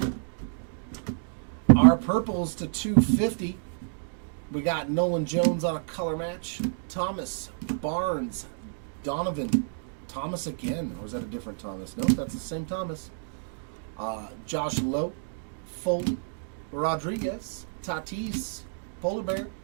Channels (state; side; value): silent; left; digital silence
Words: Our purples to 250. We got Nolan Jones on a color match. Thomas, Barnes, Donovan, Thomas again. Or is that a different Thomas? Nope, that's the same Thomas. Josh Lowe, Foley, Rodriguez, Tatis, Polar Bear,